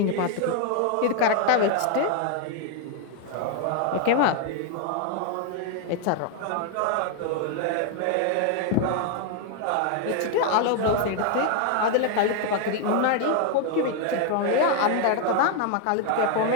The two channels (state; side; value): different; both; correlation 0.00